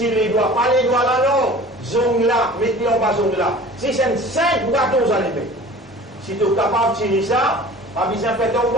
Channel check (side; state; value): both; normal; correlation 0.43